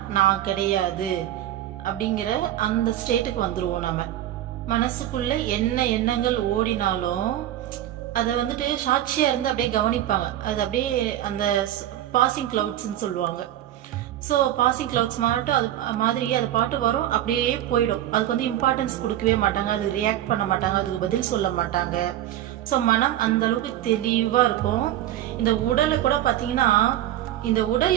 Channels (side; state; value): left; quieter; 12.8 dB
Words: நான் கிடையாது அப்படிங்கிற அந்த ஸ்டேட்டுக்கு வந்துருவோம். நம்ம மனசுக்குள்ள என்ன எண்ணங்கள் ஓடினாலும் அதை வந்துட்டு சாட்சியா இருந்து அப்படியே கவனிப்பாங்க. அது அப்படியே அந்த பாசிங் கிளவுட்ஸ்ன்னு சொல்லுவாங்க. ஸோ பாசிங் கிளவுட்ஸ் மாட்டும் அது மாதிரி அது பாட்டு வரும், அப்படியே போயிடும். அதுக்கு வந்து இம்பார்ட்டன்ஸ் கொடுக்கவே மாட்டாங்க, அது ரியாக்ட் பண்ண மாட்டாங்க, அதுக்கு பதில் சொல்ல மாட்டாங்க. ஸோ மனம் அந்த அளவுக்கு தெளிவா இருக்கும். இந்த உடலை கூட பார்த்தீங்கன்னா இந்த உடல்